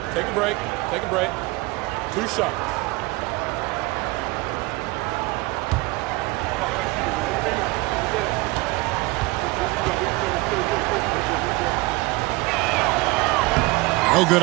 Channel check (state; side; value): quieter; left; 22.7 dB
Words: Take a break. Take a break. 2 shots. No good